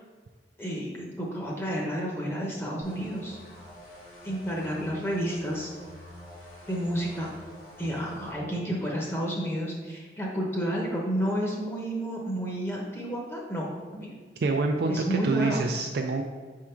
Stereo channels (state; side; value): normal; both; correlation 0.66